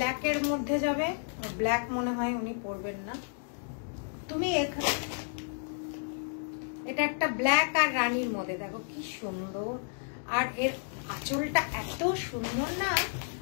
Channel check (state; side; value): silent; right; digital silence